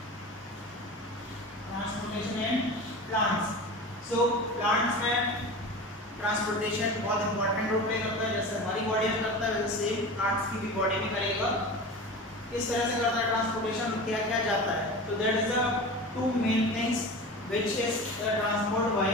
So plants में transportation बहुत important role play करता है, जैसे हमारी बॉडी में करता है वैसे सेम प्लांट्स की भी बॉडी में करेगा. किस तरह से करता है ट्रांसपोर्टेशन, क्या क्या जाता है? तो that is the two main things which is the transport by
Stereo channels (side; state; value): both; normal; correlation 0.31